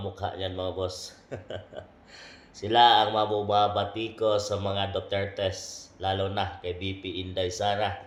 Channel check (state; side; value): identical; both; correlation 1.00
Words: mukha niyan mga boss. Sila ang mabubabati ko sa mga Dutertes, lalo na kay VP Inday Sara.